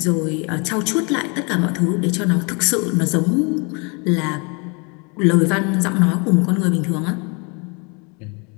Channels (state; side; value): quieter; right; 32.5 dB